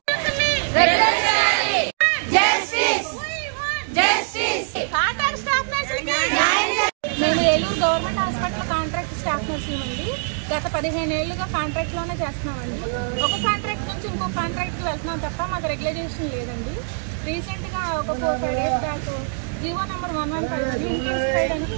మేము Eluru government hospital contract staff నర్సులు అండి. గత 15 ఏళ్లుగా కాంట్రాక్ట్లోనే చేస్తున్నామండి. ఒక కాంట్రాక్ట్ నుంచి ఇంకో కాంట్రాక్ట్కి వెళ్తున్నాం తప్ప మాకు రెగ్యులైజేషన్ లేదండి. రీసెంట్గా ఒక 4-5 days back GO number 115 intensified అని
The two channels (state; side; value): silent; left; digital silence